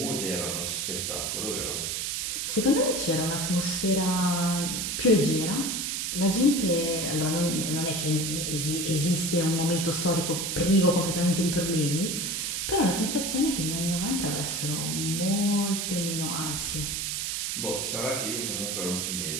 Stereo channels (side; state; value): right; noise; hiss, 1 dB below the sound